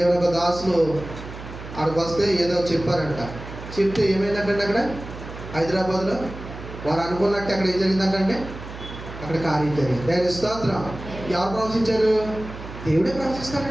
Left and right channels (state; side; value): noise; right; hum, 12 dB below the sound